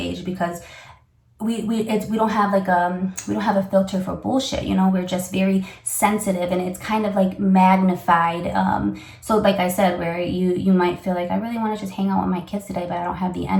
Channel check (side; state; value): both; identical; correlation 1.00